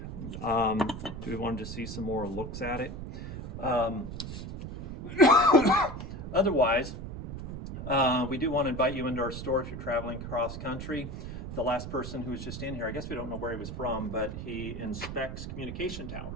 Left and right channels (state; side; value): noise; right; rumble, 7 dB below the sound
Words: do we want to just see some more looks at it? Otherwise, we do want to invite you into our store if you're traveling cross country. The last person who was just in here, I guess we don't know where he was from, but he inspects communication